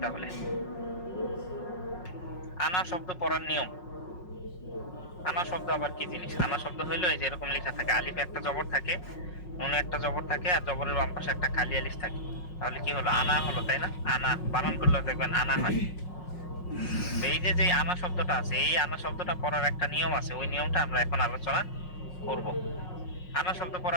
তাহলে। আনা শব্দ পড়ার নিয়ম। আনা শব্দ আবার কি জিনিস? আনা শব্দ হইলো এই যে এরকম লেখা থাকে, আলিফে একটা জবর থাকে, নুনে একটা জবর থাকে, আর জবরের বাম পাশে একটা খালি আলিফ থাকে। তাহলে কি হলো? আনা হলো, তাই না? আনা বানান করলে দেখবেন আনা হয়। তো এই যে যে আনা শব্দটা আছে, এই আনা শব্দটা পড়ার একটা নিয়ম আছে, ওই নিয়মটা আমরা এখন আলোচনা করব। আনা শব্দ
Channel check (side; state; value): right; late; 5.5 ms